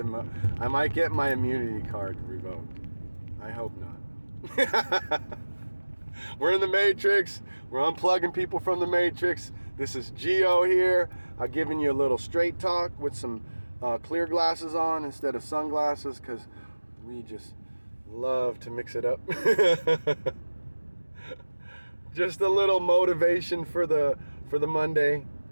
my immunity card revoked. I hope not. We're in the Matrix. We're unplugging people from the Matrix. This is GEO here. I'm giving you a little straight talk with some clear glasses on instead of sunglasses, because we just love to mix it up. Just a little motivation for the Monday,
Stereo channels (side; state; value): both; inverted; correlation -1.00